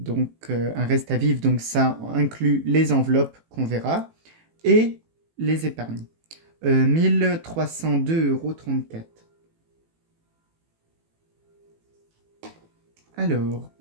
un reste à vivre, donc ça inclut les enveloppes qu'on verra et les épargnes. 1302,34 €. Alors,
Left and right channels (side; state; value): left; late; 18 ms